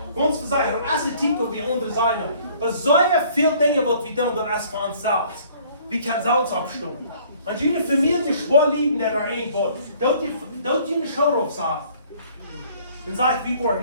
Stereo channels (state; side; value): inverted; both; correlation -0.56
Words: Ons zeggen, als het titel wie andere zijn, er zijn veel dingen wat we doen door als van zelfs. We kunnen zelfs opstaan. Als jullie familie schwaar liegen er een wordt, dat je een schouder op zegt. Dan zeg ik, we worden